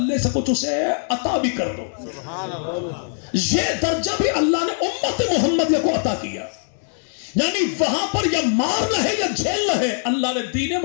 سے کچھ اسے عطا بھی کر دو۔ یہ درجہ بھی اللہ نے امت محمدیہ کو عطا کیا، یعنی وہاں پر یا مارنا ہے یا جھیلنا ہے۔ اللہ نے دین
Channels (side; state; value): right; silent; 64 dB below the other